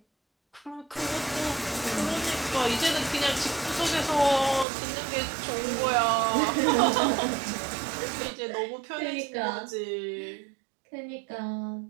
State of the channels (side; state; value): left; drops out; at 4.7 s